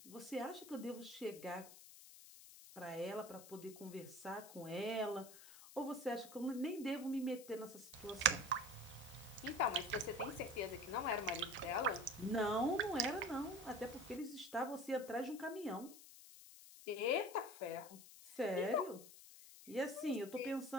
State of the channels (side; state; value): left; noise; hiss, 17 dB below the sound